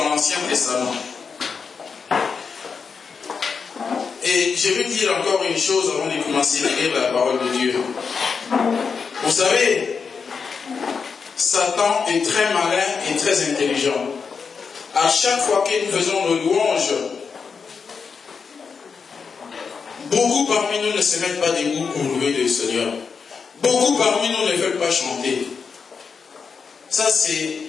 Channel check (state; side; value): quieter; right; 5.6 dB